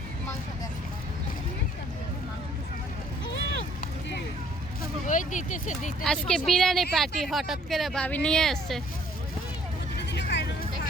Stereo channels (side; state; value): both; normal; correlation 0.60